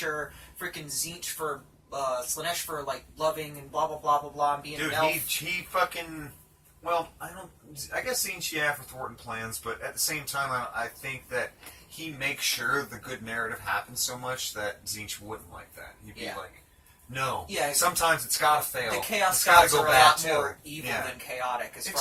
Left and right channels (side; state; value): both; identical; correlation 1.00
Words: Freaking Tzeentch for Slanesh for loving and blah blah blah blah blah and being Dude, an elf. he fucking... Well, I guess Zinch, yeah, for thwarting plans, but at the same time, I think that he makes sure the good narrative happens so much that Zinch wouldn't like that. He'd be like, no. Yeah. Sometimes it's gotta fail. The Chaos It's gotta Gods go are a bad, lot too. more evil Yeah. than chaotic as